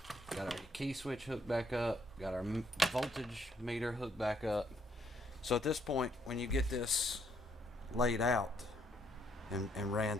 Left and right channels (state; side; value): normal; both; correlation 0.70